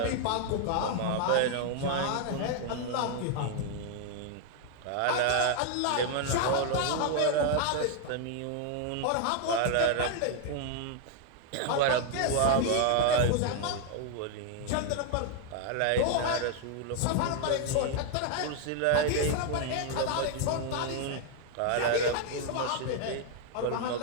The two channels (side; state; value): both; different; correlation 0.00